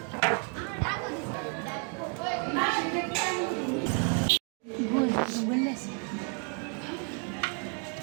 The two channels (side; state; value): left; quieter; 39.7 dB